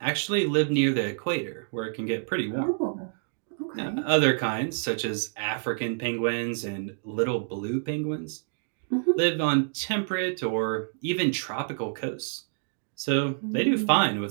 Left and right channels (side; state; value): left; silent; digital silence